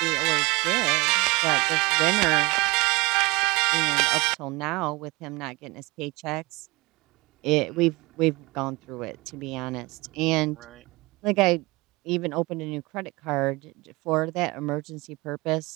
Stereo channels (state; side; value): quieter; left; 24.0 dB